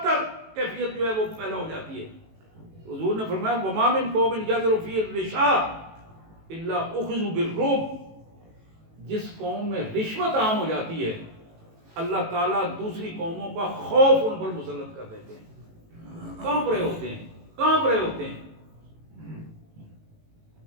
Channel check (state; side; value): late; left; 18 ms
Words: کیفیت جو ہے وہ پیدا ہو جاتی ہے. حضور نے فرمایا وَمَا مِن قَوْمٍ يَجْرُ فِيهِ الرِّشَاءُ إِلَّا أُخِذُوا بِالرُّعْبِ. جس قوم میں رشوت عام ہو جاتی ہے، اللہ تعالیٰ دوسری قوموں کا خوف ان پر مسلط کر دیتے ہیں. کانپ رہے ہوتے ہیں، کانپ رہے ہوتے ہیں.